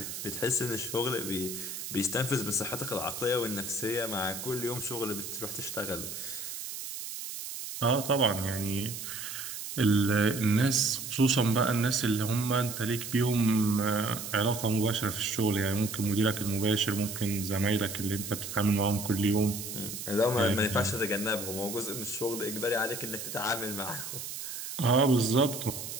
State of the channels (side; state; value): right; noise; hiss, 7 dB below the sound